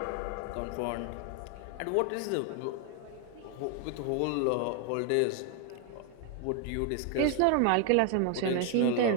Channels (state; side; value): different; both; correlation 0.00